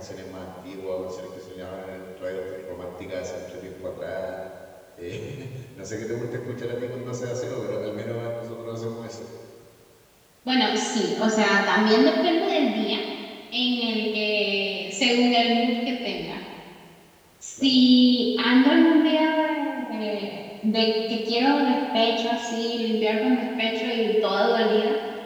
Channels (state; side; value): identical; both; correlation 1.00